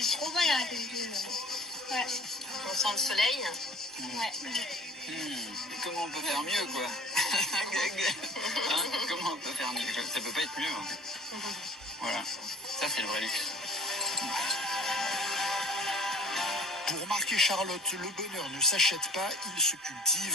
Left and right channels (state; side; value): normal; both; correlation 0.49